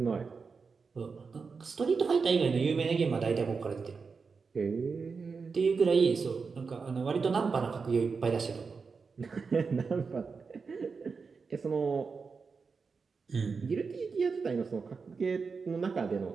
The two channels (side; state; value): left; quieter; 5.0 dB